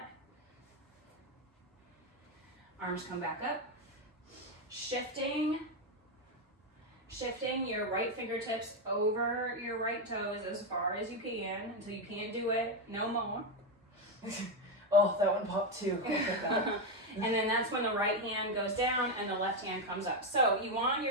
Arms come back up. Shifting your right fingertips over your right toes as far as you can until you can't do it no more. Oh, that one popped too. And then that's when the right hand goes down and the left hand comes up. So you want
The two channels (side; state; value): both; normal; correlation 0.07